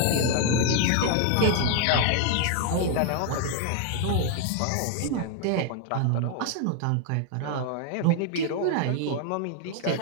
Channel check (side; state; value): both; different; correlation 0.00